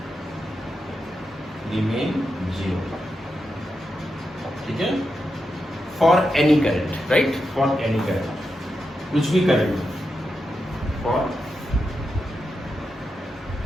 remain zero ठीक है, for any current right, for any current कुछ भी current for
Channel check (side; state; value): both; normal; correlation 0.87